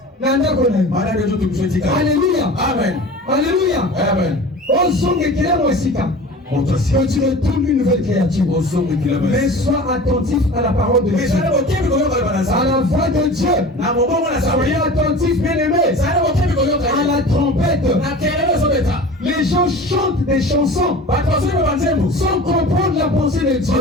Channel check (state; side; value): normal; both; correlation 0.38